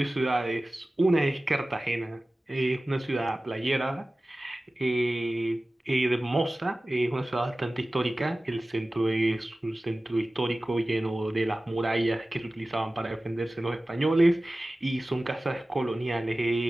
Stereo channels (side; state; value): both; normal; correlation 0.97